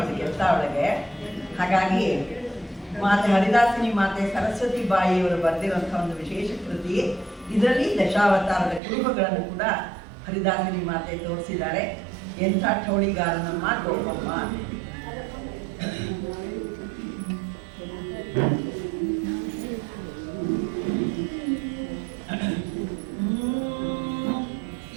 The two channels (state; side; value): drops out; left; at 8.8 s